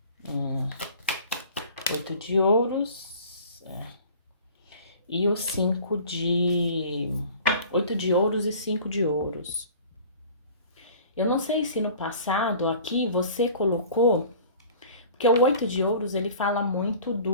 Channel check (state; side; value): inverted; both; correlation -0.46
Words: 8 de ouros, e o 5 de... 8 de ouros e 5 de ouros. Eu não sei se no passado aqui você colocou, porque o 8 de ouros ele fala muito